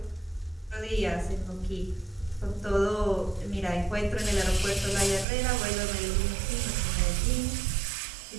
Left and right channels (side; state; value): left; drops out; at 5.2 s